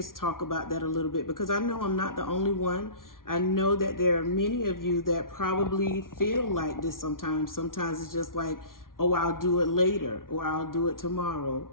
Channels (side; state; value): right; late; 0.91 ms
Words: talk about that a little bit, because I know I'm not the only one. I know that there are many of you that probably feel like this sometimes. Sometimes it's just like, oh, I'll do it later, or I'll do it tomorrow.